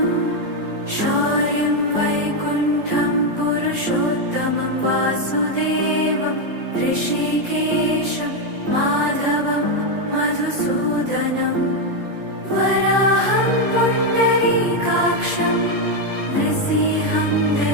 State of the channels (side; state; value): left; late; 4.0 ms